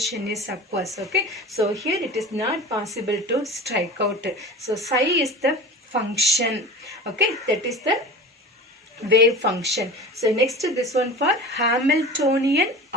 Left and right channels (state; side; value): normal; both; correlation 0.34